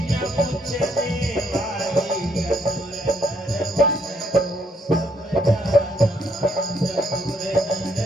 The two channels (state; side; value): normal; both; correlation 0.71